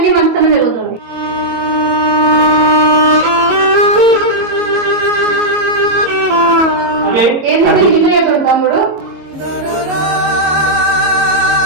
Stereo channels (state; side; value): late; left; 22 ms